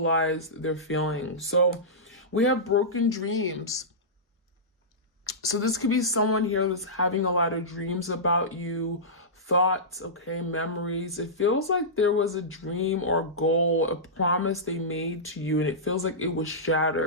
their feelings. So we have broken dreams. So this could be someone here that's having a lot of dreams about you, thoughts, okay, memories. It feels like there was a dream or goal, a promise they made to you, and it feels like it was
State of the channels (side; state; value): both; normal; correlation -0.16